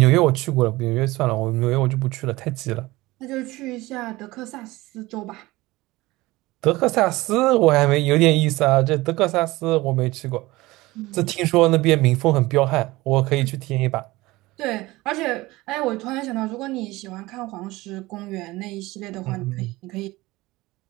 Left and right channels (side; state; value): left; quieter; 19.9 dB